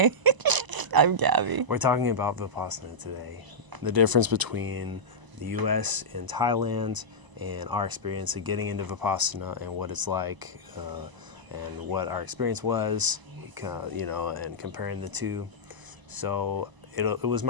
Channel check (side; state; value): left; late; 1.0 ms